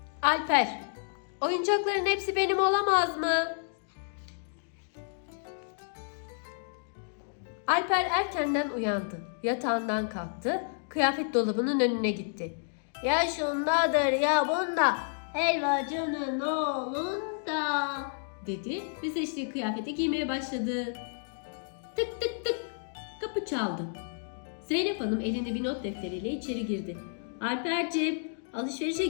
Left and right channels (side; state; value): right; silent; digital silence